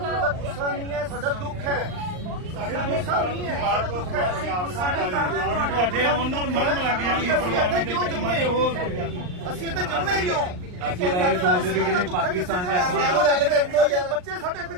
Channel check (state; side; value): late; left; 39 ms